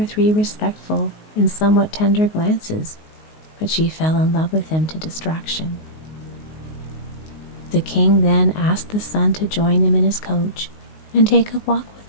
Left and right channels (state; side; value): late; right; 19 ms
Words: 3 respectful and somewhat tender glances, but she fell in love with him to distraction. The king then asked the son to join him in his coach and take a walk with